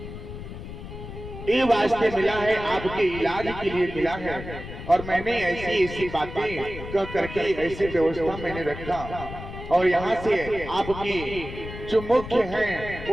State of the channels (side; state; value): left; noise; rumble, 11 dB below the sound